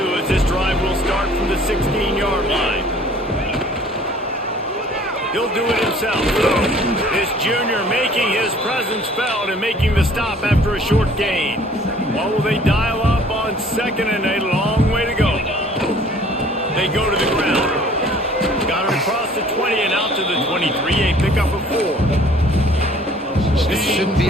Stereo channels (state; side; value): normal; both; correlation 0.53